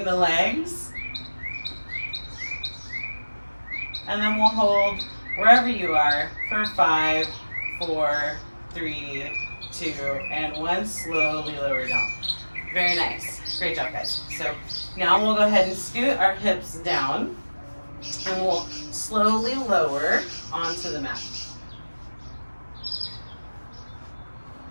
the legs. And then we'll hold wherever you are for 5, 4, 3, 2, and 1. Slowly lower down. Very nice. Great job, guys. So now we'll go ahead and scoot our hips down. And we'll slowly lower onto the mat.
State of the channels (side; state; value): both; inverted; correlation -1.00